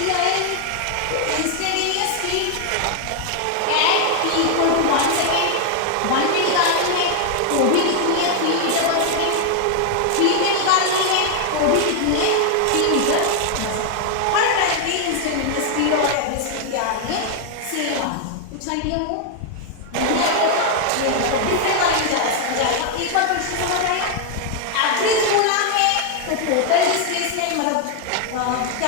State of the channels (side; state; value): both; different; correlation 0.00